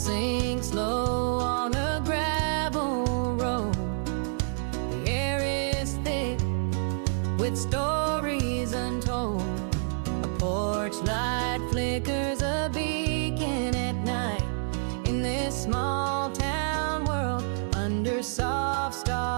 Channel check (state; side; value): silent; left; digital silence